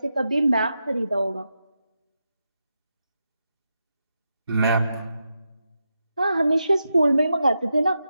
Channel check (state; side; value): inverted; both; correlation -0.87